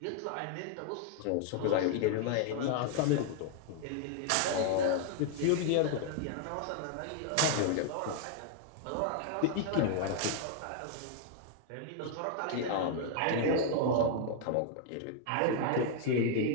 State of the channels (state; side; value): different; both; correlation 0.00